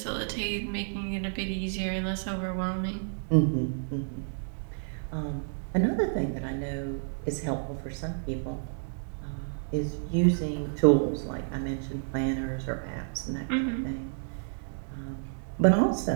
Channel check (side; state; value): left; silent; digital silence